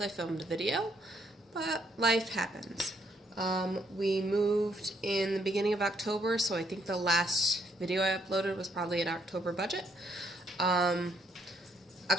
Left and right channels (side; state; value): both; normal; correlation 0.71